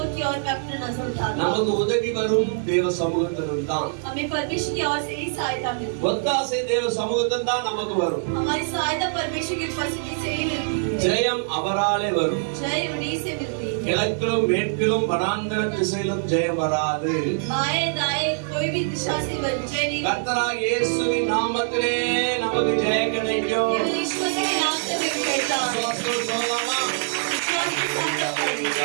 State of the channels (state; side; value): silent; left; digital silence